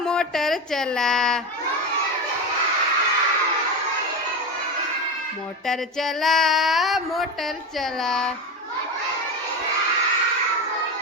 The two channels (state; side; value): normal; both; correlation 0.19